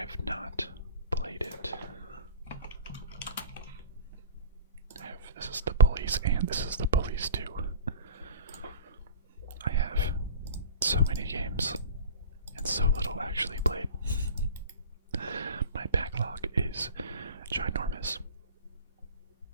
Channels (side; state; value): both; inverted; correlation -0.38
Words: not played it. I have This Is the Police and This Is the Police 2. I have so many games and so little actually played. My backlog is ginormous.